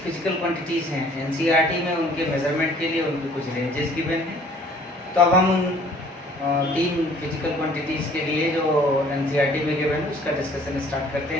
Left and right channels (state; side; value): normal; both; correlation 0.55